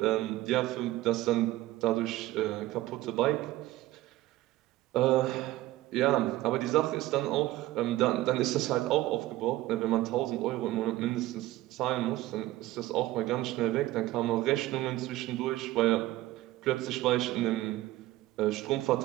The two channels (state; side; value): quieter; left; 16.6 dB